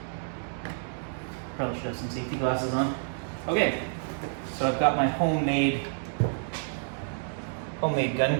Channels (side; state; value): left; silent; digital silence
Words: Probably should have some safety glasses on. Okay, so I've got my homemade